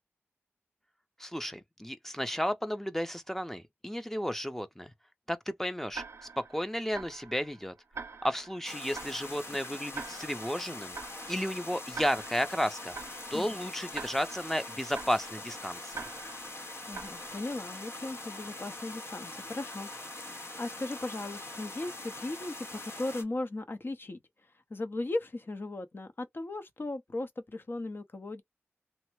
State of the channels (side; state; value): both; normal; correlation 0.89